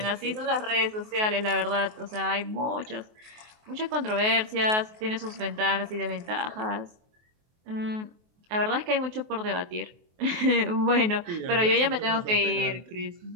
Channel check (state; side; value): late; left; 23 ms